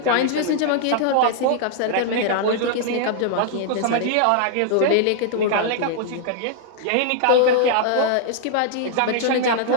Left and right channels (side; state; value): both; different; correlation -0.01